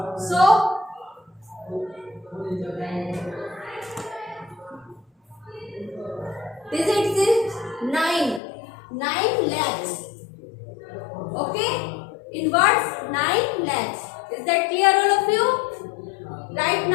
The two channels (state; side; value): drops out; right; at 8.4 s